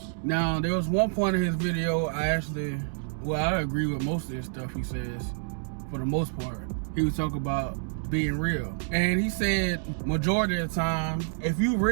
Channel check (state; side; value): silent; left; digital silence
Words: Now, there was one point in his video I agree with most of this stuff he says, for the most part. He was talking about being real. And he said majority of the time, if you